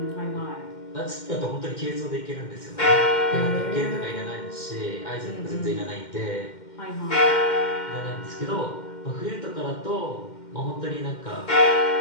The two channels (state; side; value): late; right; 2.1 ms